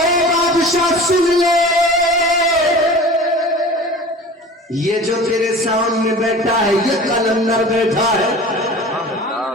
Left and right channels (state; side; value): normal; both; correlation 0.39